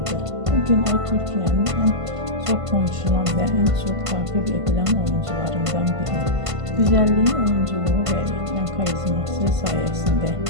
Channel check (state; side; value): late; left; 1.5 ms